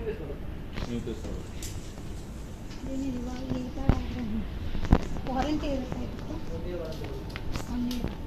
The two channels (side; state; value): both; identical; correlation 1.00